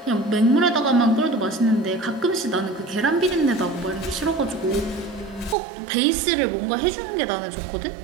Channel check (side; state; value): left; drops out; at 5.6 s